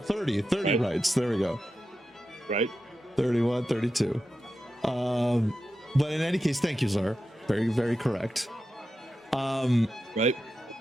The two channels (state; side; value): normal; both; correlation 0.90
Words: right. Rights. There we go. Right. 31, 32. But in any case, thank you, sir. Very, very correct. Right.